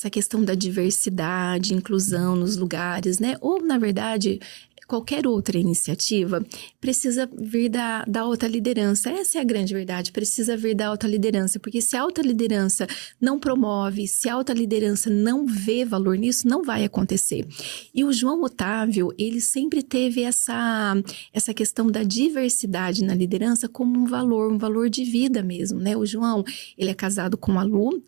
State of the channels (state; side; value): quieter; left; 29.8 dB